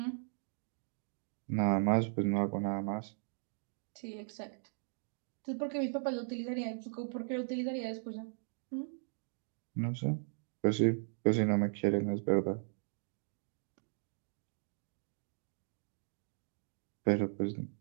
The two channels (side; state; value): left; silent; digital silence